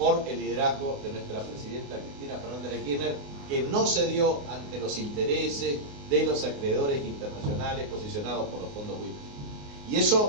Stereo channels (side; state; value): left; late; 29 ms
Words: el liderazgo de nuestra presidenta Cristina Fernández de Kirchner, que no cedió ante los intereses de los acreedores internacionales posicionados por los fondos buitres. Y